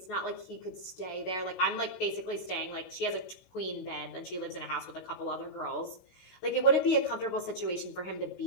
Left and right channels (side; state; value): right; late; 16 ms